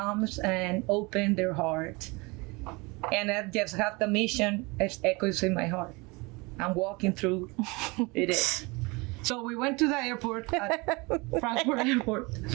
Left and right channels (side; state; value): left; quieter; 26.3 dB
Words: and open their heart, and I just have the mission as echoes in my heart. I'm walking through it is. So we went to the airport, Frankfurt Airport.